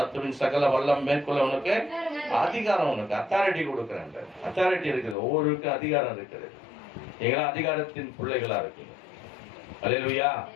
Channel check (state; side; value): drops out; right; at 5.2 s